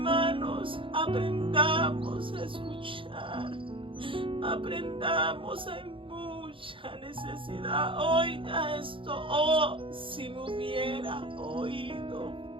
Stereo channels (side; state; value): left; late; 0.25 ms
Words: aprendamos a escuchar. Aprendamos, hay mucha necesidad. Oiga esto: oh, si me hubiera oído.